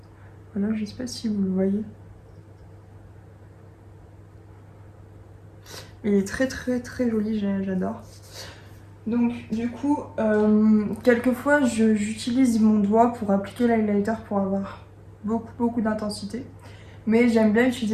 Voilà, je sais pas si vous le voyez. Il est très très très joli, j'adore. Donc du coup, quelquefois j'utilise mon doigt pour appliquer l'highlighter pour avoir beaucoup d'intensité. Mais j'aime bien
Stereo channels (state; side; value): identical; both; correlation 1.00